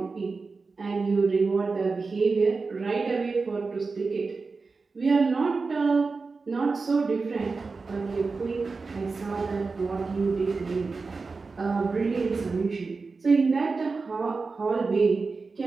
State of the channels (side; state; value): left; quieter; 4.2 dB